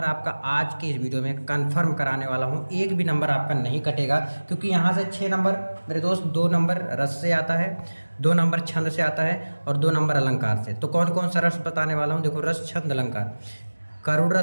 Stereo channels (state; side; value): inverted; both; correlation -1.00